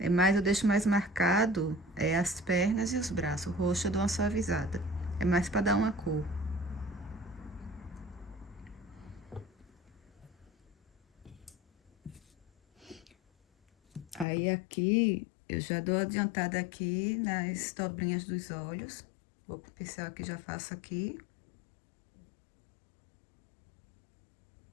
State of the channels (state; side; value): drops out; right; at 14.2 s